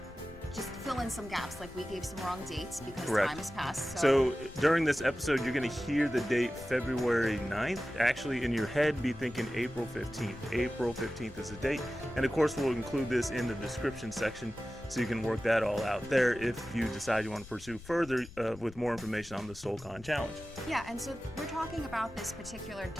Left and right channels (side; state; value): left; noise; rumble, 17 dB below the sound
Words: just fill in some gaps, like we gave some wrong dates because Correct. Time has passed. So during this episode, you're going to hear the date February 9th. Actually, in your head, be thinking April 15th. April 15th is the date. And of course, we'll include this in the description section so you can work that all out there if you decide you want to pursue further with more information on the SoulCon Challenge. Yeah, and so we're talking about this particular